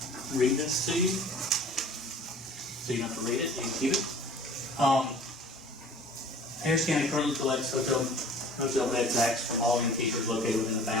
read this to you, so you don't have to read it, you can keep it. Harris County currently collects hotel bed tax from all innkeepers located within the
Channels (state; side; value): normal; both; correlation 0.47